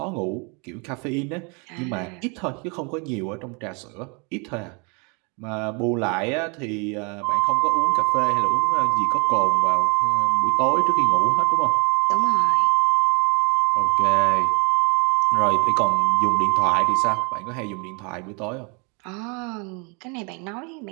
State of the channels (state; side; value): quieter; left; 32.5 dB